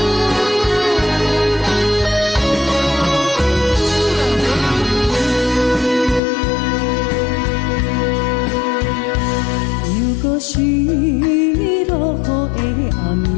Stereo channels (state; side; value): drops out; right; at 6.2 s